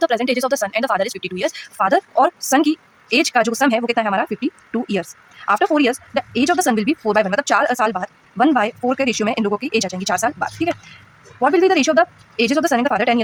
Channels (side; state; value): both; identical; correlation 1.00